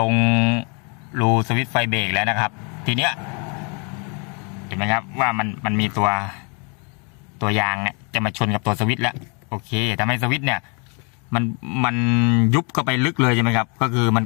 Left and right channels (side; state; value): right; quieter; 35.1 dB